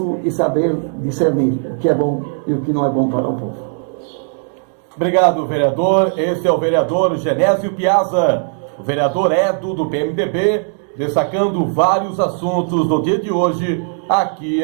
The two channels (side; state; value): left; silent; 60 dB below the other